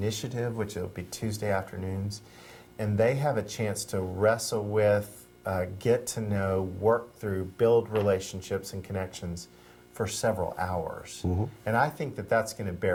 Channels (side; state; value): both; identical; correlation 1.00